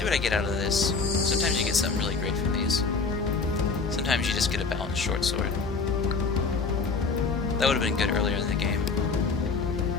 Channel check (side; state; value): right; quieter; 4.5 dB